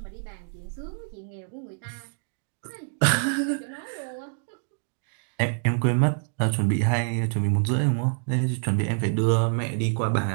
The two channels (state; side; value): silent; left; digital silence